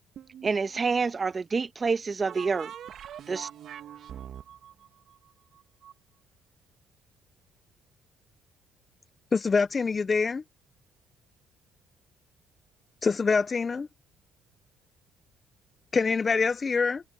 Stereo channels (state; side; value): normal; both; correlation 0.89